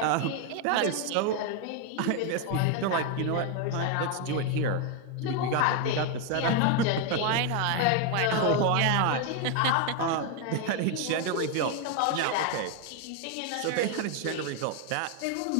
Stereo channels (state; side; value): different; both; correlation 0.01